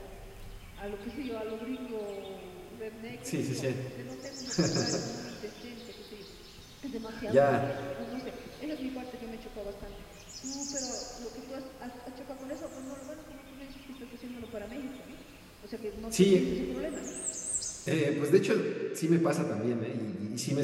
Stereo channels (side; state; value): both; identical; correlation 1.00